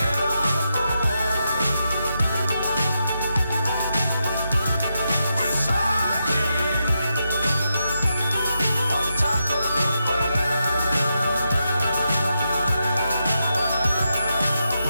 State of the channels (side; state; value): both; inverted; correlation -0.85